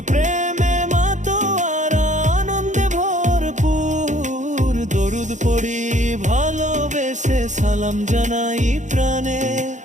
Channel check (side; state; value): left; late; 0.35 ms